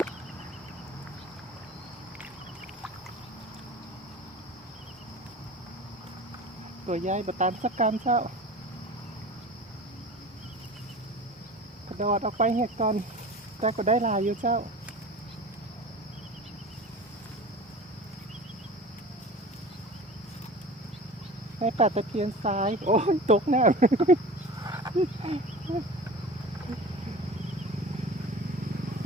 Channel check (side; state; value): both; normal; correlation 0.37